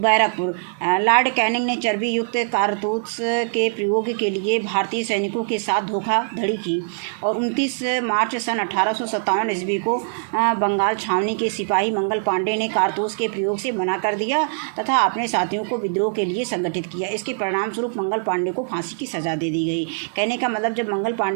लॉर्ड कैनिंग ने चर्बी युक्त कारतूस के प्रयोग के लिए भारतीय सैनिकों के साथ धोखाधड़ी की, और 29 मार्च सन 1857 ईस्वी को बंगाल छावनी के सिपाही मंगल पांडे ने कारतूस के प्रयोग से मना कर दिया तथा अपने साथियों को विद्रोह के लिए संगठित किया। इसके परिणाम स्वरूप मंगल पांडे को फांसी की सजा दे दी गई। कहने का मतलब, जब मंगल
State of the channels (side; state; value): left; silent; 63 dB below the other